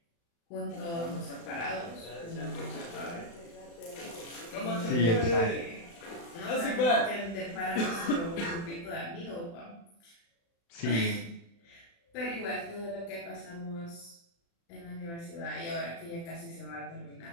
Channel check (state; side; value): late; right; 35 ms